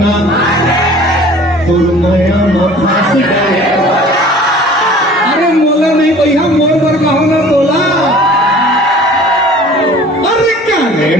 नया फंस गए अरे मोला नहीं भैया मोर पर कहो ना बोला अरे क्या रे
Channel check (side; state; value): both; normal; correlation 0.47